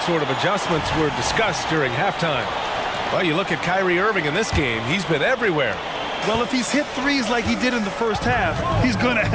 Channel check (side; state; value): both; identical; correlation 1.00